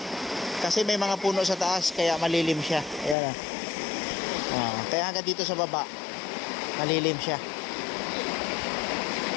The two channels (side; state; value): right; drops out; at 3.2 s